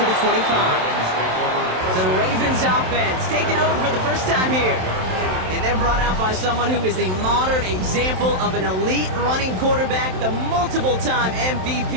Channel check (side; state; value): left; late; 27 ms